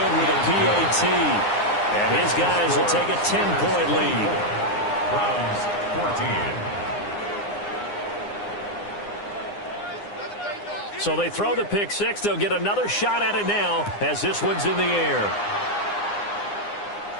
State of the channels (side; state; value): right; late; 9.8 ms